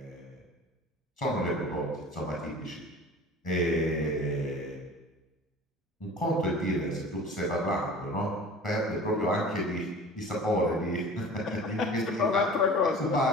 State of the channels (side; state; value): both; normal; correlation 0.41